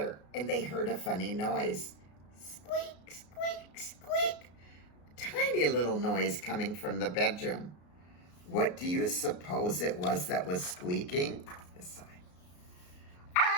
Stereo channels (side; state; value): right; late; 33 ms